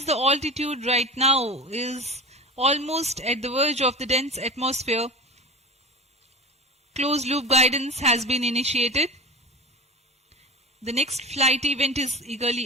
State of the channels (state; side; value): normal; both; correlation 0.31